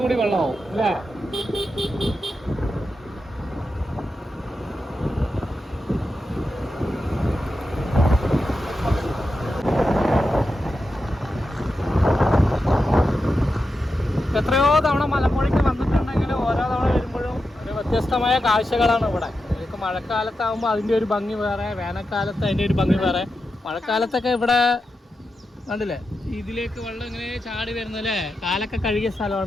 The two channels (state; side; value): normal; both; correlation 0.89